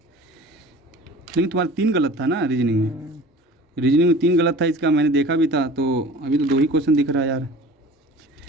लेकिन तुम्हारा 3 गलत था ना रीजनिंग में, रीजनिंग में 3 गलत था, इसका मैंने देखा भी था, तो अभी तो 2 ही क्वेश्चन दिख रहा है यार।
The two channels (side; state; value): both; normal; correlation 0.42